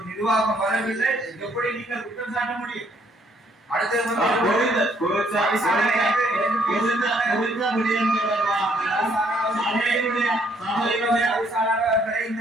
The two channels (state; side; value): normal; both; correlation 0.67